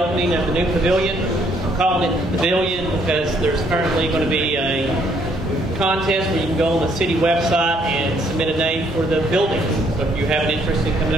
of the new pavilion. I'm calling it the pavilion because there's currently going to be a contest where you can go on the city website and submit a name for the building. So if you have an interest in coming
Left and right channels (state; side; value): normal; both; correlation 0.67